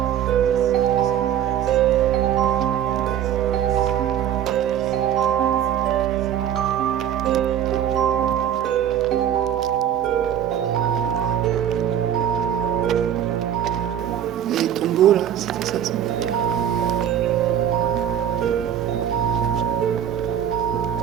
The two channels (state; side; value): quieter; left; 10.0 dB